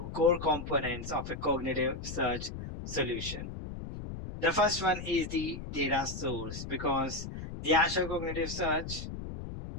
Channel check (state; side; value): noise; left; rumble, 8 dB below the sound